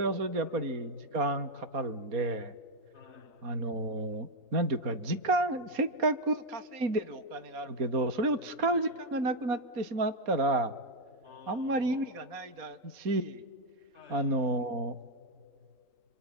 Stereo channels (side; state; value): left; late; 4.2 ms